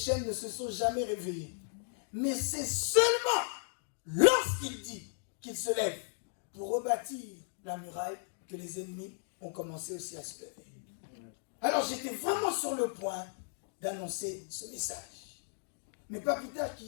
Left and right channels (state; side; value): silent; right; digital silence